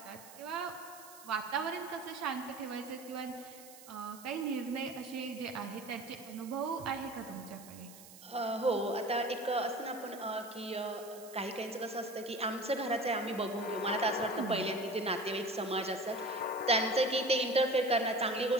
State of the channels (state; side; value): noise; right; hiss, 18 dB below the sound